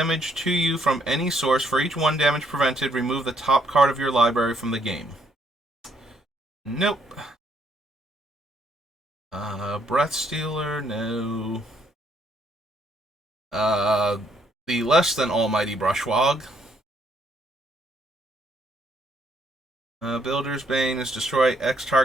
to you from any source. For each 1 damage prevented, remove the top card of your library from the game. Nope. Breath Stealer, no. The less than almighty Brushwog. Builder's Bane is destroy X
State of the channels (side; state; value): both; normal; correlation 0.71